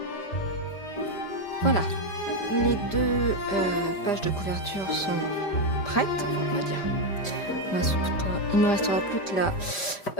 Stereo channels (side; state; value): right; late; 5.0 ms